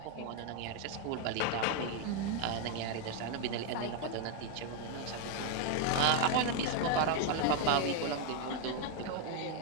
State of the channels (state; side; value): different; both; correlation 0.01